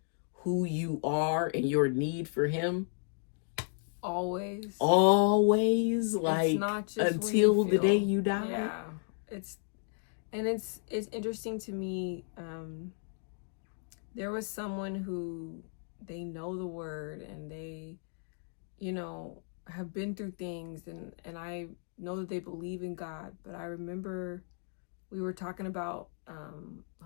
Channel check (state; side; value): silent; right; 55 dB below the other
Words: who you are and your need for him, always, like, it's not just until the day you die. Yeah, it's interesting to me. There was someone who, they know the word and they, have been through things, and I know that they believe in God. But I remember we were talking about